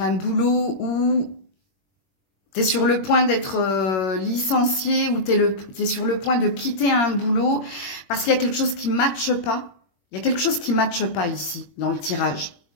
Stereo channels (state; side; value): late; right; 21 ms